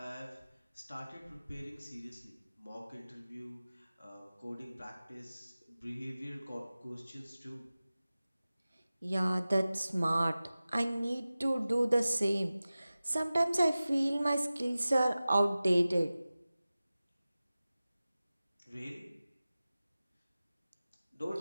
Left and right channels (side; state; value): both; inverted; correlation -0.96